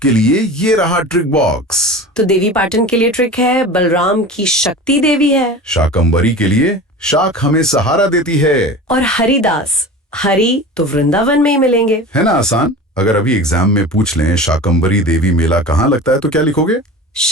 लिए ये रहा ट्रिक बॉक्स। तो देवी पाटन के लिए ट्रिक है, बलराम की शक्ति देवी है। शाकंभरी के लिए शाक हमें सहारा देती है। और हरिदास, हरि तो वृंदावन में ही मिलेंगे। है ना आसान? अगर अभी एग्जाम में पूछ लें शाकंभरी देवी मेला कहाँ लगता है तो क्या लिखोगे?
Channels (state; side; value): normal; both; correlation 0.34